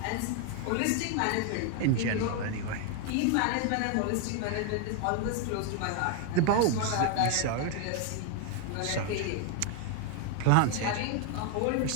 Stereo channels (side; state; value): both; different; correlation 0.01